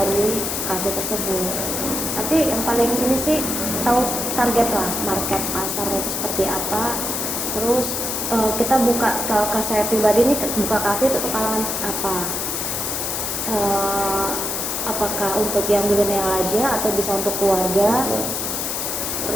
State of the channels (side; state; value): left; noise; hiss, 2 dB below the sound